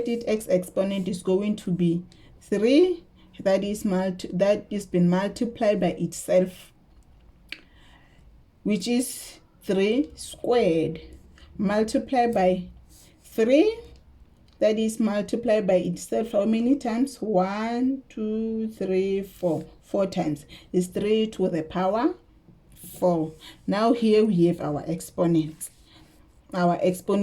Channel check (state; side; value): identical; both; correlation 1.00